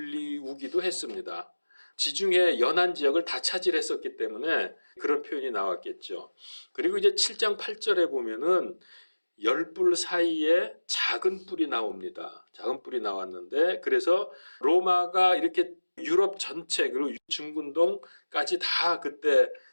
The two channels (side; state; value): both; inverted; correlation -1.00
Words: 했습니다. 지중해 연안 지역을 다 차지했었기 때문에 그런 표현이 나왔겠죠. 그리고 이제 7장 8절에 보면은 10뿔 사이에 작은 뿔이 나옵니다. 작은 뿔이 나왔는데 그래서 로마가 이렇게 유럽 전체 그리고 중근동까지 다 그때